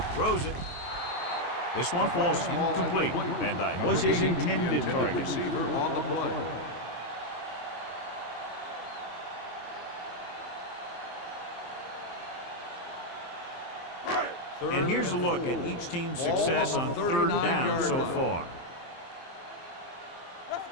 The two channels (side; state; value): right; late; 23 ms